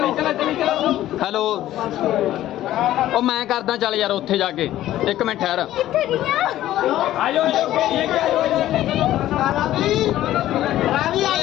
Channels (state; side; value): quieter; right; 13.7 dB